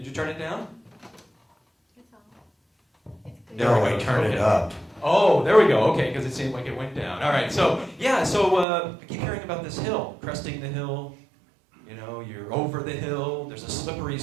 you turn it down? No, I turned it up. Oh, there we go. Okay, because it seemed like it went down. All right, so I keep hearing about this hill, cresting the hill. You're over the hill. There's a slippery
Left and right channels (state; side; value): drops out; left; at 8.7 s